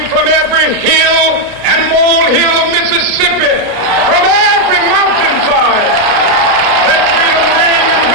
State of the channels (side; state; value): left; late; 33 ms